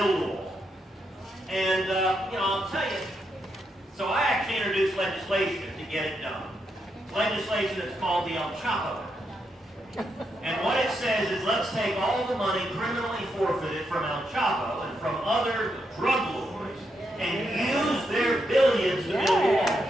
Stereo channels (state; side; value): normal; both; correlation 0.82